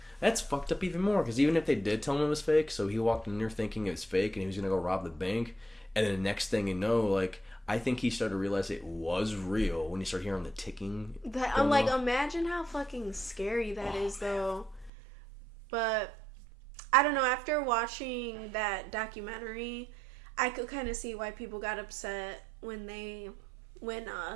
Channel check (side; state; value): left; drops out; at 14.9 s